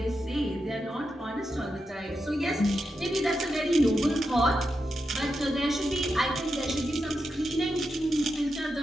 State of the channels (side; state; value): both; normal; correlation 0.87